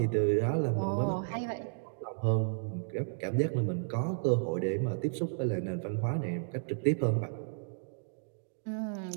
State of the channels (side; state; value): left; silent; digital silence